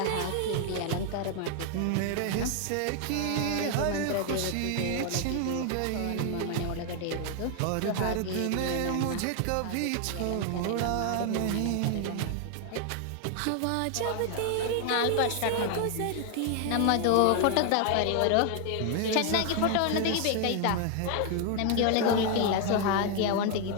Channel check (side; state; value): both; different; correlation 0.00